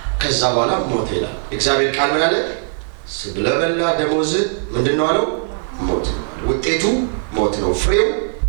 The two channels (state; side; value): silent; left; digital silence